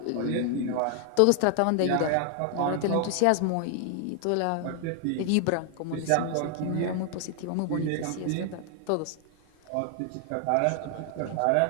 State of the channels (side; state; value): both; different; correlation 0.00